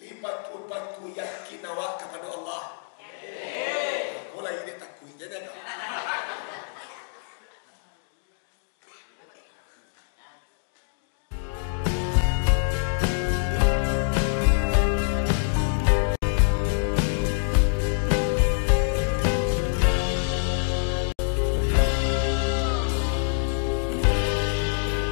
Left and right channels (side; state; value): right; silent; digital silence